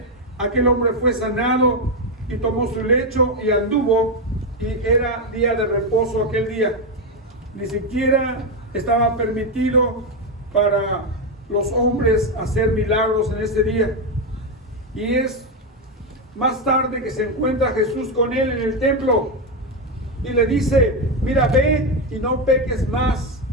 aquel hombre fue sanado y tomó su lecho y anduvo, y era día de reposo aquel día. Ni siquiera estaba permitido para los hombres hacer milagros en ese día. Y es más tarde que se encuentra Jesús con él en el templo y le dice, mira, ve y no peques más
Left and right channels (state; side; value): normal; both; correlation 0.08